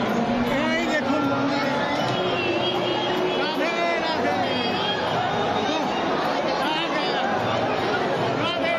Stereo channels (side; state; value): both; identical; correlation 1.00